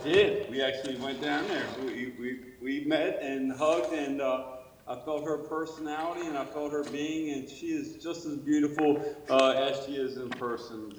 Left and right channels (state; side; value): identical; both; correlation 1.00